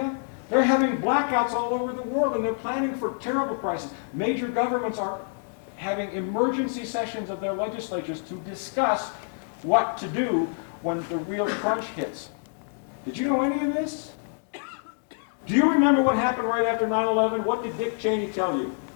They're having blackouts all over the world, and they're planning for terrible crises. Major governments are having emergency sessions of their legislatures to discuss what to do when the real crunch hits. Did you know any of this? Do you remember what happened right after 9/11? What did Dick Cheney tell you?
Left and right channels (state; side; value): silent; right; 60 dB below the other